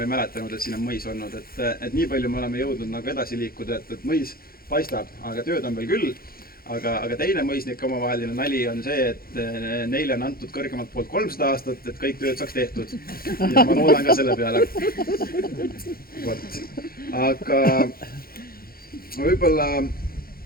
ei mäletanud, et siin on mõis olnud, et nii palju me oleme jõudnud nagu edasi liikuda, et mõis paistab, aga tööd on veel küll, aga teine mõisnike omavaheline nali on see, et neile on antud kõrgemalt poolt 300 aastat, et kõik tööd saaks tehtud ja ma loodan ka selle peale. Aga võib-olla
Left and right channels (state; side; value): late; right; 0.43 ms